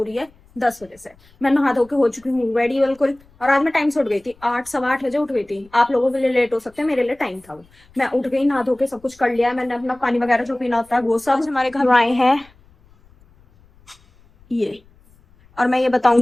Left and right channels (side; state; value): left; noise; rumble, 29 dB below the sound